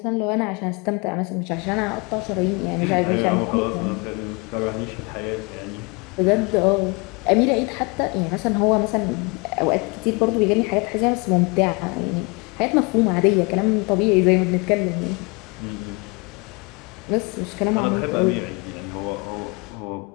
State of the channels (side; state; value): right; quieter; 29.6 dB